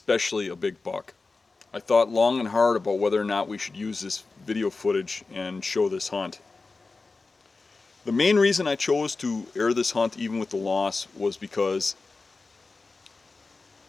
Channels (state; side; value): quieter; right; 3.9 dB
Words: a big buck. I thought long and hard about whether or not we should use this video footage and show this hunt. The main reason I chose to air this hunt even with the loss was because